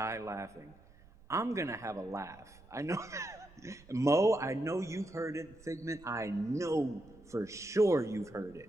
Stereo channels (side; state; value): right; noise; rumble, 24 dB below the sound